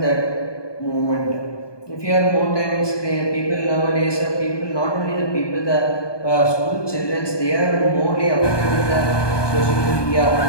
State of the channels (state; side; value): late; right; 1.2 ms